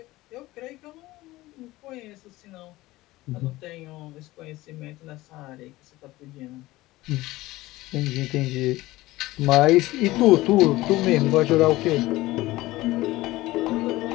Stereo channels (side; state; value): right; quieter; 18.3 dB